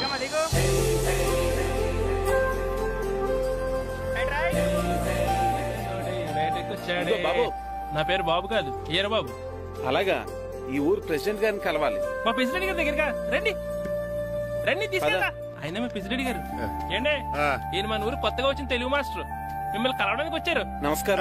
బాబు, నా పేరు బాబు కాదు, ఈర బాబు. అలాగా, ఈ ఊరు ప్రెసిడెంట్ గారిని కలవాలి. మా ప్రెసిడెంట్ గారి దగ్గరగా రండి. రండి తీసుకెళ్ళా. ఆయన మా ప్రెసిడెంట్ గారు. ఏండే, ఈయన మన ఊరు కొత్తగా వచ్చిన తెలుగు మాస్టర్, మిమ్మల్ని కలవడానికి వచ్చారు.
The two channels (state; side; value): identical; both; correlation 1.00